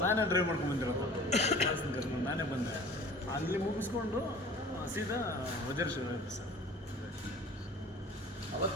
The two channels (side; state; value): both; normal; correlation 0.44